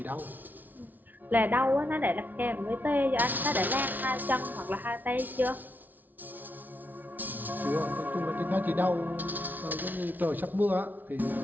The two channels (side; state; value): left; late; 0.083 ms